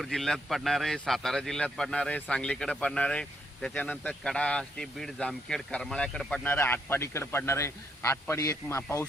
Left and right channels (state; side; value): normal; both; correlation 0.75